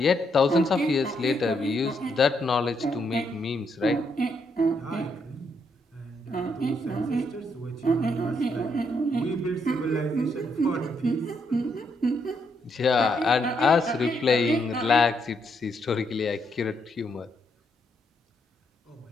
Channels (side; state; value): both; normal; correlation 0.77